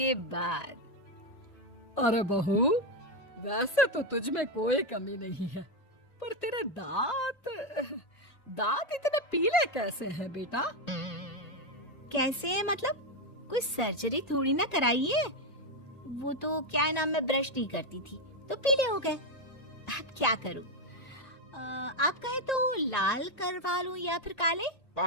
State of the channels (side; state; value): right; late; 1.9 ms